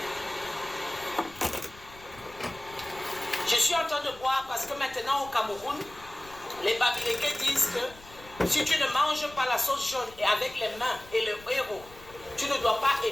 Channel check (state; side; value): noise; left; rumble, 21 dB below the sound